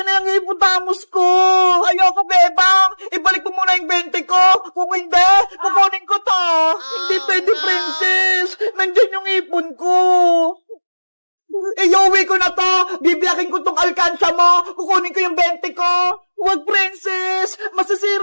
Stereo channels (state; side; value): inverted; both; correlation -1.00